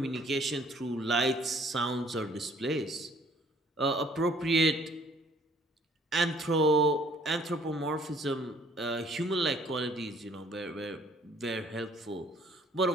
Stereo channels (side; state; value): both; normal; correlation 0.59